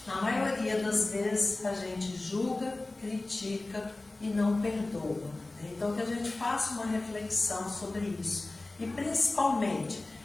na maioria das vezes a gente julga, critica e não perdoa. Então que a gente faça uma reflexão sobre isso e principalmente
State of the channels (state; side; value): quieter; right; 3.0 dB